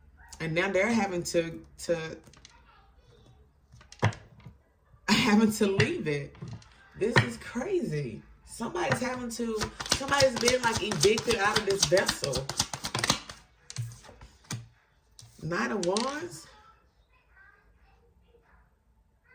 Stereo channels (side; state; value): both; identical; correlation 1.00